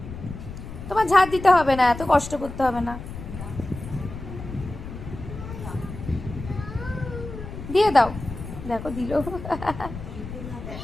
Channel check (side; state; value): left; noise; rumble, 10 dB below the sound